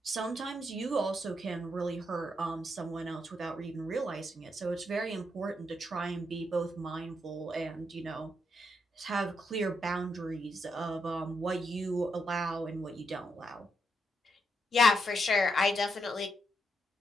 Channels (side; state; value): both; normal; correlation 0.80